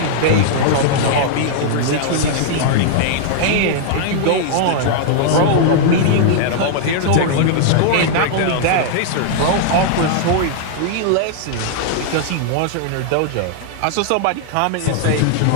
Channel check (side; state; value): both; different; correlation -0.01